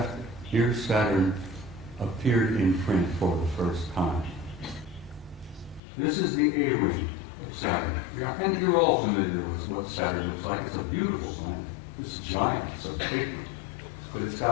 near Saturn appeared in print for the first time. This is the A-ring of Saturn. And you're all familiar with what Saturn looks like. It's a beautiful planet. It's giant. It's a big one. But it's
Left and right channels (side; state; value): right; drops out; at 5.8 s